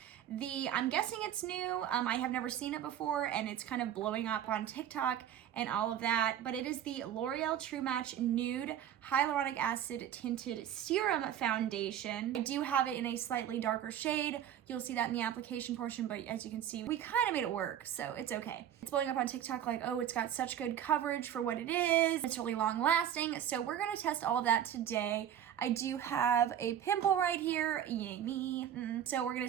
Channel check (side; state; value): left; quieter; 10.2 dB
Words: I'm guessing it's new. I have never seen it before and it's kind of blowing up on TikTok and all of that, but it is the L'Oreal True Match Nude Hyaluronic Acid Tinted Serum Foundation. I do have it in a slightly darker shade. You'll see that in the application portion, but as you can see, we kind of made it work, so it's okay. It's blowing up on TikTok like, oh, it's got such good coverage for what it is. It's really long lasting, so we're gonna test all of that today. I do have a pimple right here, yay me. So we're gonna